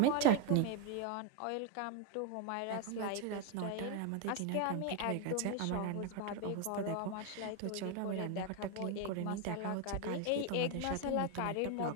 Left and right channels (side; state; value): both; different; correlation 0.01